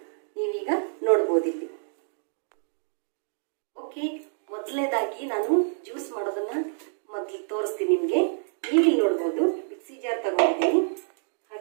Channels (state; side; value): silent; left; digital silence